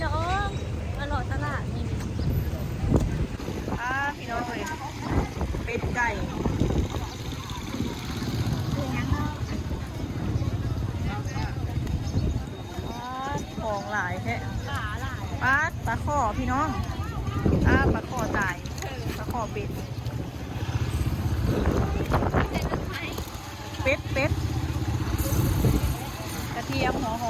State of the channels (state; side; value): identical; both; correlation 1.00